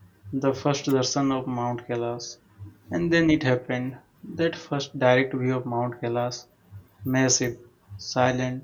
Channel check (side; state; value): both; identical; correlation 1.00